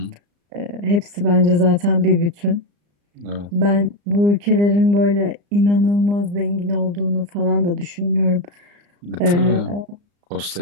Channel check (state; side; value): late; left; 34 ms